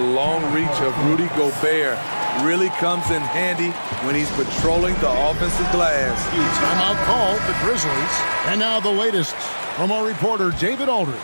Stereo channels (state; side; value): inverted; both; correlation -1.00